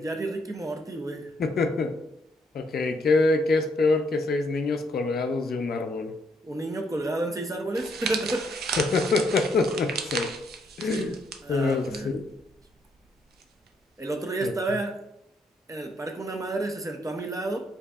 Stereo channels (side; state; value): both; normal; correlation 0.73